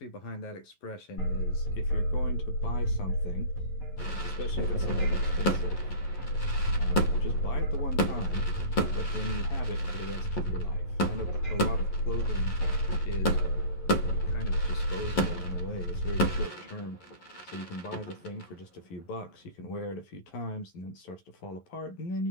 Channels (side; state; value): right; late; 11 ms